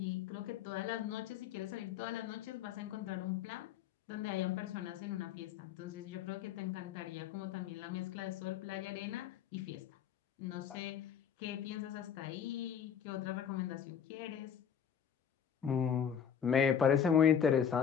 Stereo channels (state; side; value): quieter; right; 8.2 dB